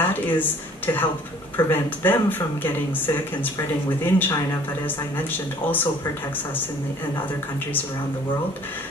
is to help prevent them from getting sick and spreading within China, but as I mentioned, also protects us in other countries around the world.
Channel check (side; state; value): both; normal; correlation 0.54